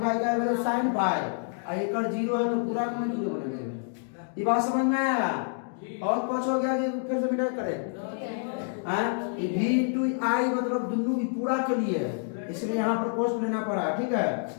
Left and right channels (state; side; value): silent; right; digital silence